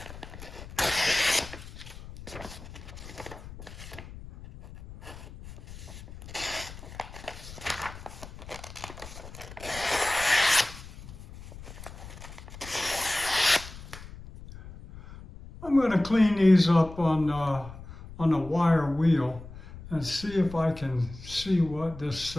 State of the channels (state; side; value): noise; left; rumble, 15 dB below the sound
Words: I'm going to clean these up on a wire wheel and see if I can see what this